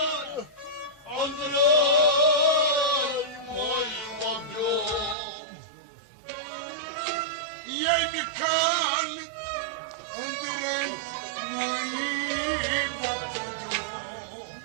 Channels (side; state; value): left; drops out; at 5.2 s